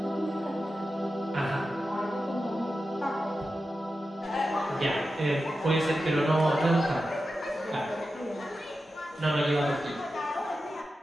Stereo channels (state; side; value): normal; both; correlation 0.91